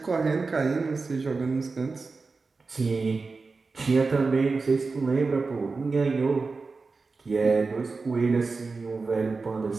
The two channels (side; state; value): left; quieter; 4.1 dB